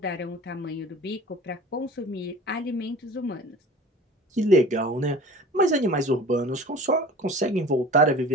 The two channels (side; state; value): both; normal; correlation 0.41